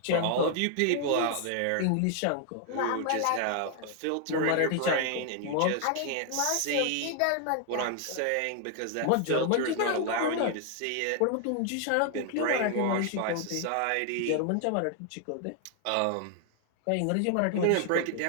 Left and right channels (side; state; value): both; different; correlation 0.00